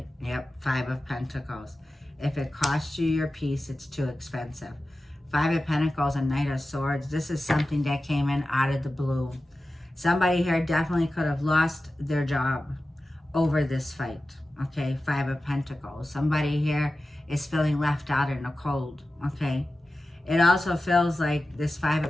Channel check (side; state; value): both; normal; correlation 0.94